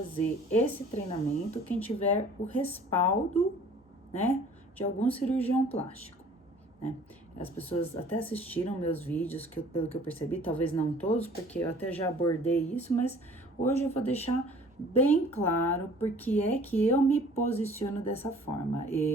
esse treinamento quem tiver o respaldo, né, de algum cirurgião plástico, né? As pessoas até assistiram meus vídeos, pelo que eu percebi, talvez não todos, porque eu até já abordei isso, mas hoje eu vou deixar bem claro porque é que eu me posiciono dessa forma.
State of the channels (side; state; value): both; normal; correlation 0.51